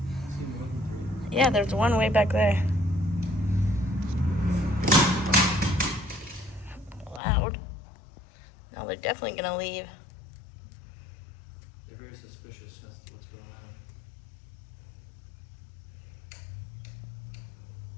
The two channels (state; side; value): drops out; right; at 7.2 s